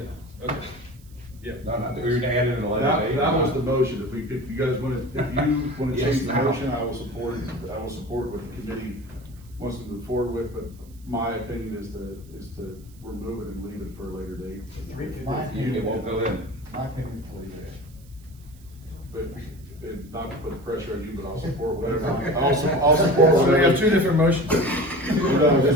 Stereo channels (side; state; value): right; noise; hiss, 28 dB below the sound